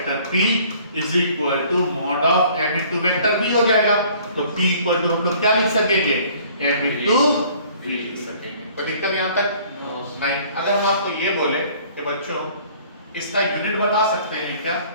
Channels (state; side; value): inverted; both; correlation -0.55